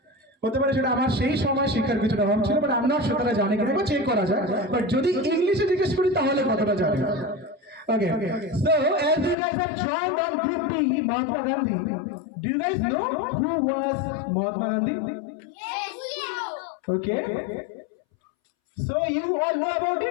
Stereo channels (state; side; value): drops out; right; at 9.3 s